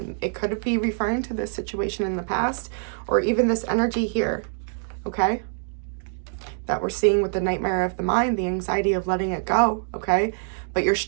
It could be referring to this situation in the past, or even this energy here, okay? That we're seeing with the nightmare of the mind, the anxiety of letting it go, okay? But your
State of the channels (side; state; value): left; silent; digital silence